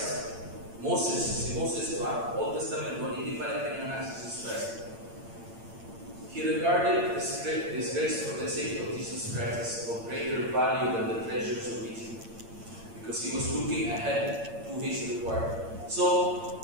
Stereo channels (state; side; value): late; left; 8.8 ms